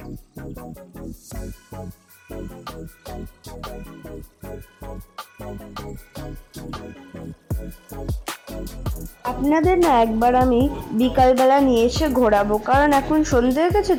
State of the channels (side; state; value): both; identical; correlation 1.00